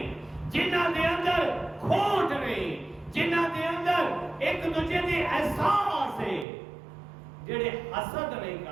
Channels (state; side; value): drops out; left; at 6.5 s